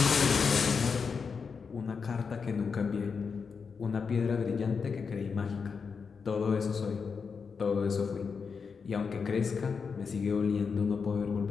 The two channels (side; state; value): right; quieter; 5.6 dB